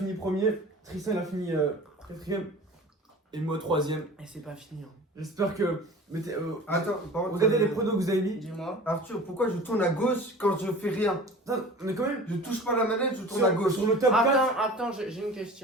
premier, Tristan il a fini quatrième, et moi troisième. Et c'est pas fini. Hein. J'espère que. Attends, par contre, Regardez les pronos que vous avez mis. Dis-moi. Arthur, pourquoi je tourne à gauche quand je fais rien? Attends, mais quand même. Je touche pas la manette, je tourne à gauche. Sur le top 4. Attends, j'ai une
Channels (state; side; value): normal; both; correlation 0.40